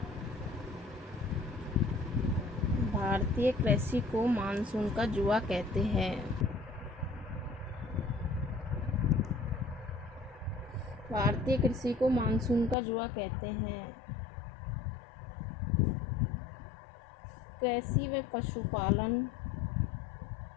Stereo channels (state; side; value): drops out; right; at 12.8 s